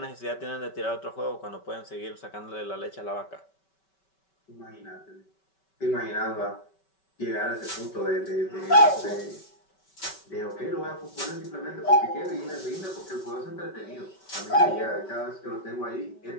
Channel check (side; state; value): right; late; 5.2 ms